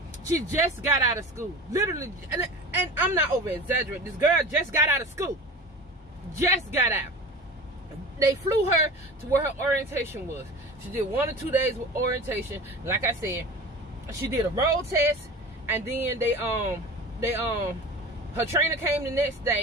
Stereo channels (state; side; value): normal; both; correlation 0.35